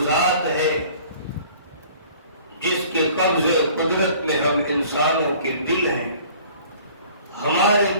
ذات ہے جس کے قبضے قدرت میں ہم انسانوں کے دل ہیں، ہمارے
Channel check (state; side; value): inverted; both; correlation -0.50